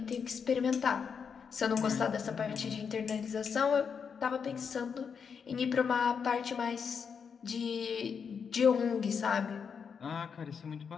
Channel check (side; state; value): right; quieter; 6.4 dB